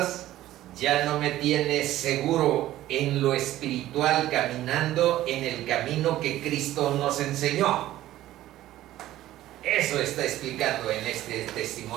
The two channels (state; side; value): quieter; left; 14.5 dB